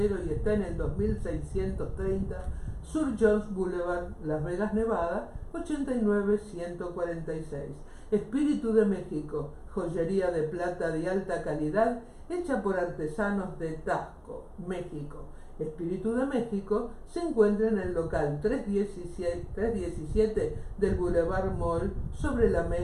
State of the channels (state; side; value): identical; both; correlation 1.00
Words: y está en el 2630 Sur Jones Boulevard, Las Vegas, Nevada, 89146. Espíritu de México, joyería de plata de alta calidad hecha por artesanos de Taxco, México. Espíritu de México se encuentra en el local 317 del Boulevard Mall sobre la